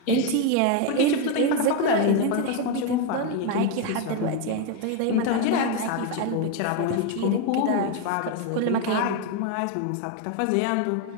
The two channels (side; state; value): both; different; correlation 0.02